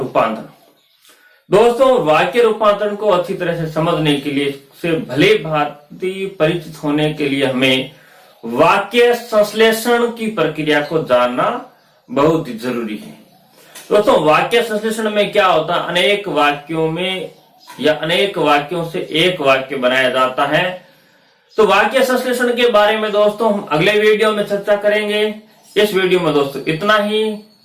दोस्तों वाक्य रूपांतरण को अच्छी तरह से समझने के लिए, से भले भांति परिचित होने के लिए हमें वाक्य संश्लेषण की प्रक्रिया को जानना बहुत जरूरी है। दोस्तों वाक्य संश्लेषण में क्या होता है, अनेक वाक्यों में या अनेक वाक्यों से एक वाक्य बनाया जाता है। तो वाक्य संश्लेषण के बारे में दोस्तों हम अगले वीडियो में चर्चा करेंगे। इस वीडियो में दोस्तों इतना ही।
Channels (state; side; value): identical; both; correlation 1.00